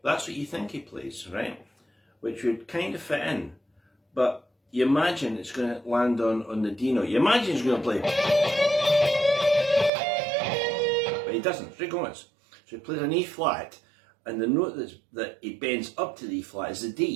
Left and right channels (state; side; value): drops out; left; at 9.9 s